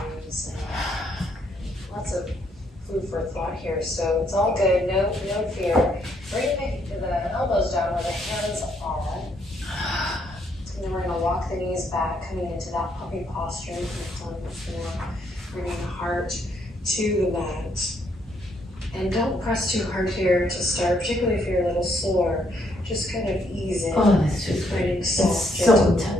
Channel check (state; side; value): normal; both; correlation 0.72